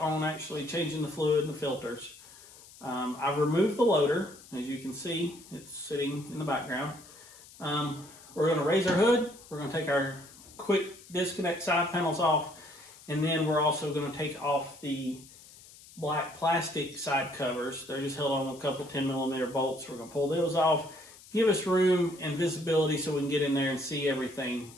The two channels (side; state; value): left; noise; hiss, 21 dB below the sound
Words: actually changing the fluid and the filters, I've removed the loader. As you can see, it's sitting in the background. We're going to raise our hood, we're going to take our quick disconnect side panels off, and then we're also going to take off the black plastic side covers. They're just held on with a couple 10mm bolts. We're going to pull those off, give us room and visibility so we can get in there and see everything